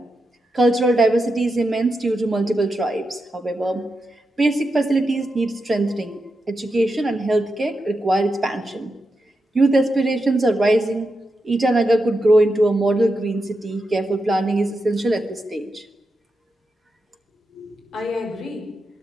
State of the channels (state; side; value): normal; both; correlation 0.87